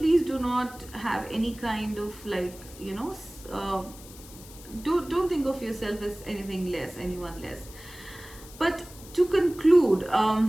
do not have any kind of like don't think of yourself as anything less, anyone less. But to conclude,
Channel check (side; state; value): left; noise; hiss, 18 dB below the sound